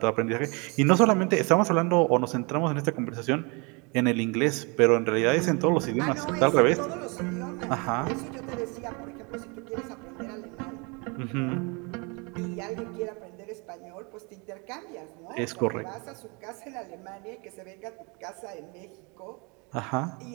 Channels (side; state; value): left; quieter; 30.7 dB